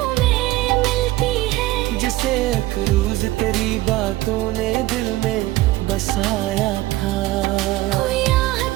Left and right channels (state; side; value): quieter; left; 17.4 dB